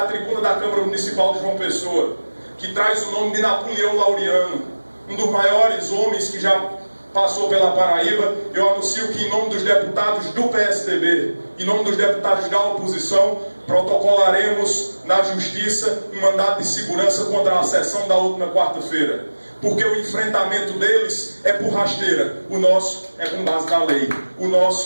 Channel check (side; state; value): both; inverted; correlation -1.00